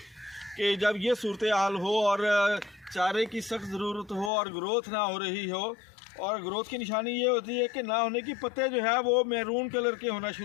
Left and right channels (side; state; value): right; drops out; at 4.3 s